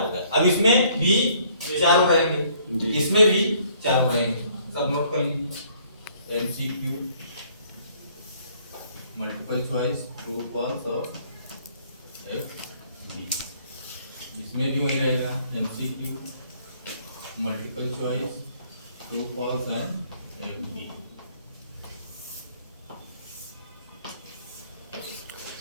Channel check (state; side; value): inverted; both; correlation -0.62